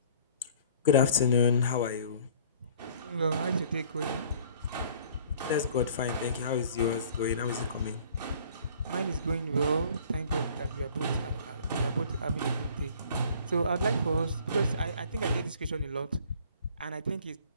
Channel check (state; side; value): inverted; both; correlation -0.52